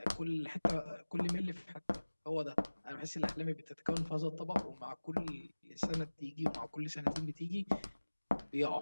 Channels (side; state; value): both; inverted; correlation -1.00